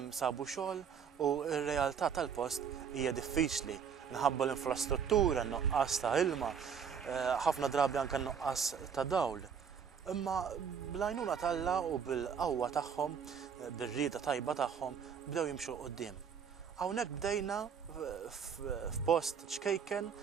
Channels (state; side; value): quieter; left; 7.2 dB